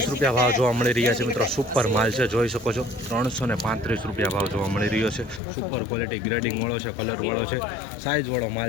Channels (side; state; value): right; drops out; at 5.4 s